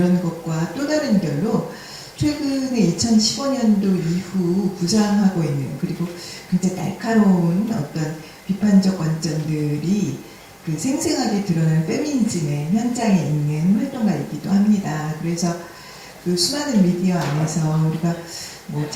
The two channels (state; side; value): identical; both; correlation 1.00